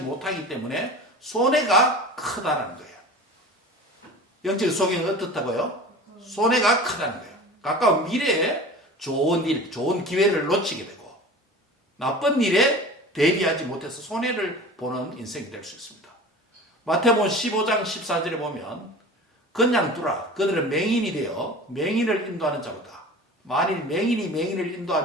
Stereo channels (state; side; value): normal; both; correlation 0.37